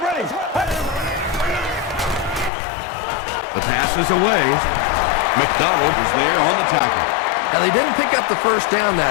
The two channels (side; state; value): right; drops out; at 2.5 s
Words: ready. The pass is away. McDonald was there on the tackle. Now, they didn't pick up the 1st down